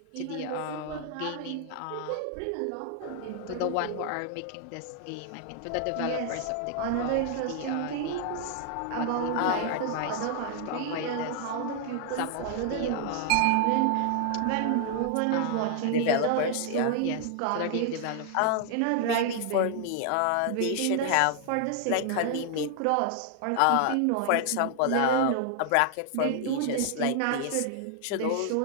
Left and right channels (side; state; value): both; different; correlation 0.00